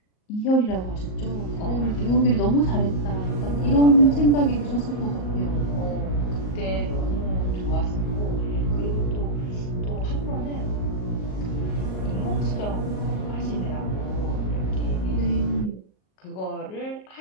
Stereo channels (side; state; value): right; late; 38 ms